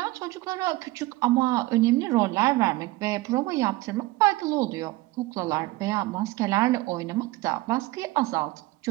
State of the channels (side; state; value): left; quieter; 19.7 dB